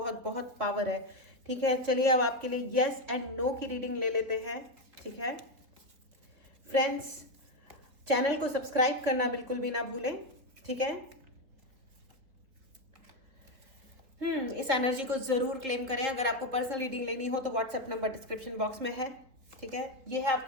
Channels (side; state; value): left; late; 3.8 ms